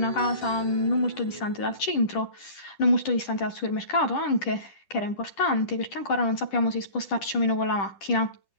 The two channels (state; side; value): late; right; 10 ms